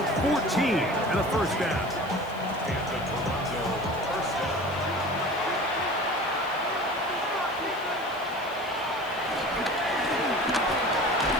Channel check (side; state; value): right; noise; hiss, 23 dB below the sound